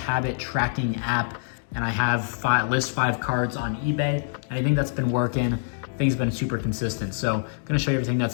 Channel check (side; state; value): right; silent; digital silence